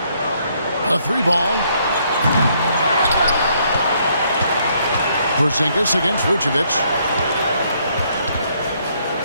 A 3-ball. Porzingis against Vucevic.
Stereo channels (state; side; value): inverted; both; correlation -0.70